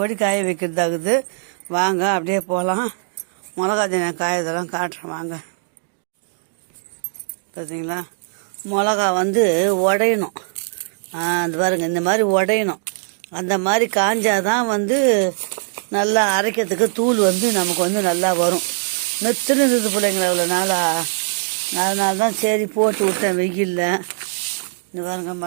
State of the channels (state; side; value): silent; left; 65 dB below the other